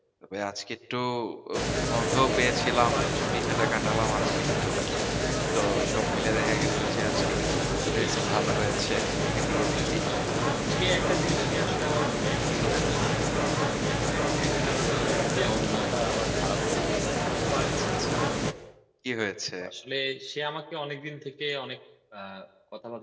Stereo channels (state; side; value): identical; both; correlation 1.00